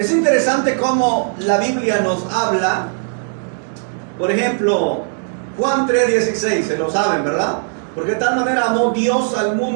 interesante cómo la Biblia nos habla. Por ejemplo, Juan 3:16, se lo saben, ¿verdad? Porque de tal manera amó Dios al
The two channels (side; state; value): left; silent; 67 dB below the other